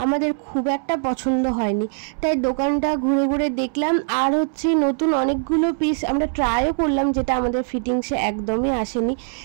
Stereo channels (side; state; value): left; silent; 64 dB below the other